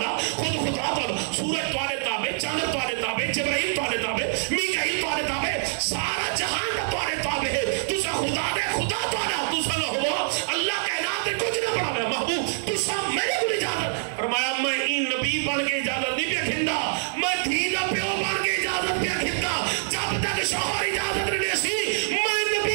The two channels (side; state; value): left; silent; 61 dB below the other